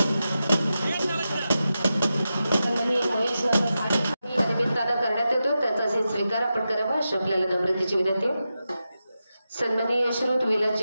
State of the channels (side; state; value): both; inverted; correlation -0.91